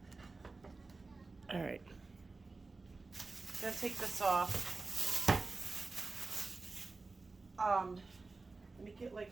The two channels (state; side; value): quieter; left; 3.7 dB